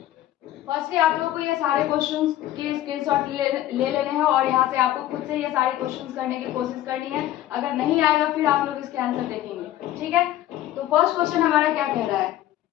फर्स्टली आप लोगों को ये सारे क्वेश्चंस के स्क्रीनशॉट ले लेने हैं और यहाँ से आपको खुद से ये सारे क्वेश्चंस करने की कोशिश करनी है। अगर नहीं आएगा फिर आप लोग इसके आंसर देखेंगे। ठीक है, तो फर्स्ट क्वेश्चन हमारा क्या कह रहा है,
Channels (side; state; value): right; quieter; 13.6 dB